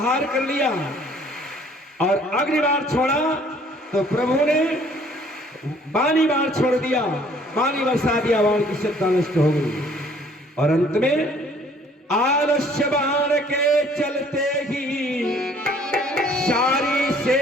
कर लिया, और अग्नि बाण छोड़ा तो प्रभु ने वाणी बाण छोड़ दिया, वाणी बरसा दिया, बाण की सत्ता नष्ट हो गई। और अंत में आलस्य बाण के चलते ही सारी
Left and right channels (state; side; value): normal; both; correlation 0.58